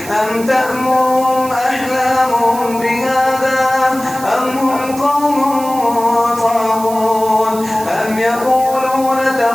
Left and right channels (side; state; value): right; noise; hiss, 14 dB below the sound